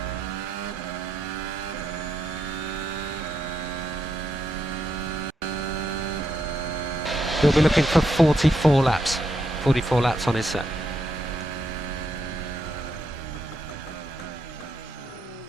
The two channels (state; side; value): normal; both; correlation 0.81